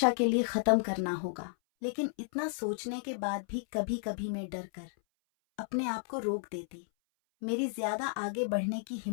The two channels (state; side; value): silent; right; 56 dB below the other